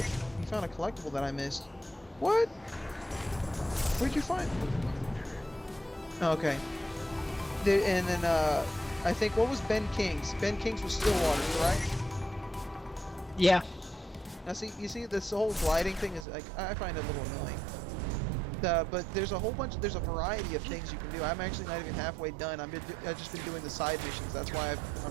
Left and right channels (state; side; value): drops out; left; at 16.2 s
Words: you found a collectible that I missed. What? Where'd you find? Okay. And then I think, what was Ben King's? Ben King's was Stillwater, correct? Yeah. Now see, you see this whole gliding thing is like, I find it a little annoying. But there's there's a variety of things you can do. I'm actually not even halfway done. I've just been doing the side missions. That's why